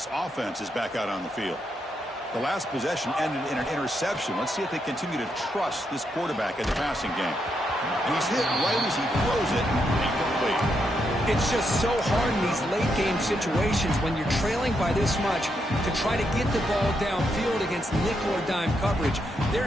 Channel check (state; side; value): normal; both; correlation 0.80